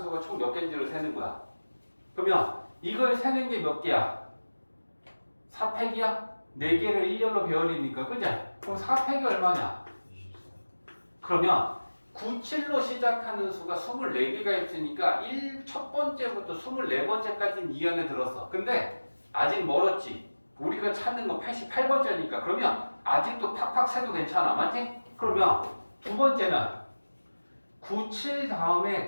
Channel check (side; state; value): both; inverted; correlation -1.00